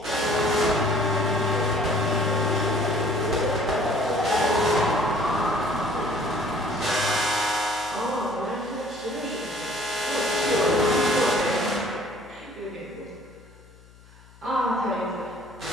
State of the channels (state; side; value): noise; left; hum, 24 dB below the sound